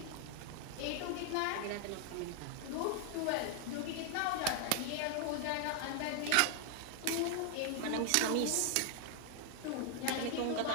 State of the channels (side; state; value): both; different; correlation 0.00